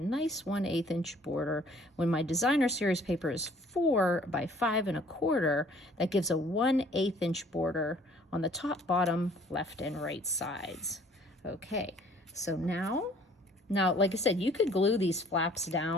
nice 1/8 inch border. When my designer series paper is 4 by 5 1/4, that gives a 1/8 inch border on the top, bottom, left, and right sides. Okay, so now, like I said, you could glue these flaps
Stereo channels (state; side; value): normal; both; correlation 0.57